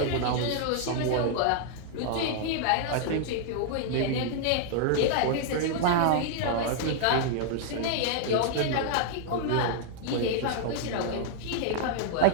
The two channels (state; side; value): different; both; correlation -0.01